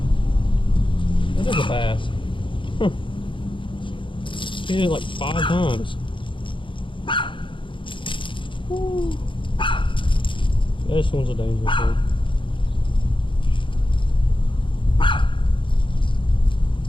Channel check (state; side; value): late; right; 0.24 ms